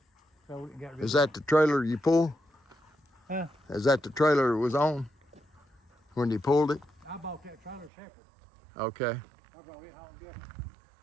So we got rid Is of that the trailer you pulled? Huh? Is that the trailer it was on when you pulled it? I bought that trailer separate. Okay. I brought it home different.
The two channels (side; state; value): left; drops out; at 7.9 s